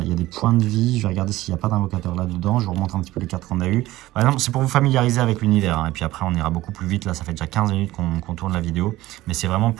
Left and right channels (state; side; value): quieter; left; 16.8 dB